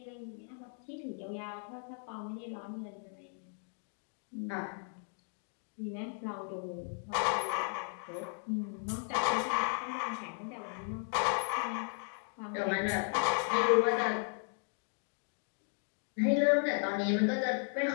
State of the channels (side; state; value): right; silent; 54 dB below the other